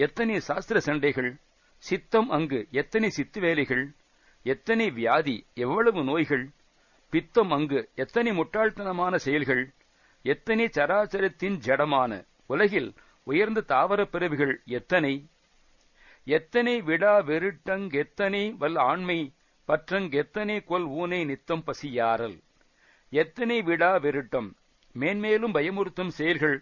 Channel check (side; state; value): both; identical; correlation 1.00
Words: சாஸ்திர சண்டைகள், சித்தம் அங்கு எத்தனை சித்து வேலைகள், எத்தனை வியாதி எவ்வளவு நோய்கள், பித்தம் அங்கு எத்தனை முட்டாள்தனமான செயல்கள், எத்தனை சராச்சரத்தின் ஜடமான. உலகில் உயர்ந்த தாவரப் பிறவிகள் எத்தனை! எத்தனை விடா வெருட்டங்கெத்தனை வல் ஆண்மை பற்றங்கெத்தனை கொல் ஊனை நித்தம் பசியாரல். எத்தனை விடா வெருட்டம், மேன்மேலும் பயமுறுத்தும் செயல்கள்